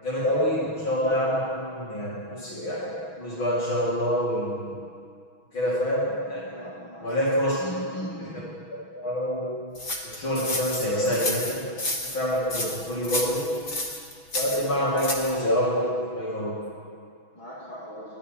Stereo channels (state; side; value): late; right; 6.2 ms